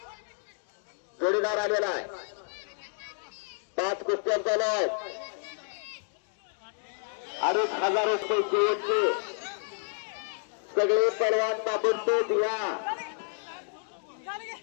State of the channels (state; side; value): silent; right; digital silence